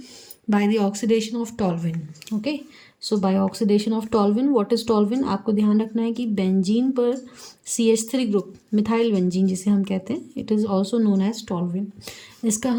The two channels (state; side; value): identical; both; correlation 1.00